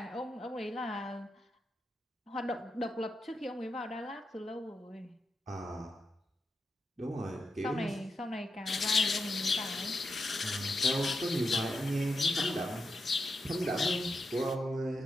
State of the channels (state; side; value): normal; both; correlation 0.87